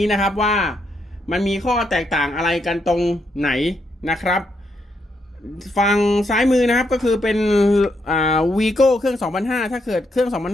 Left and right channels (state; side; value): normal; both; correlation 0.78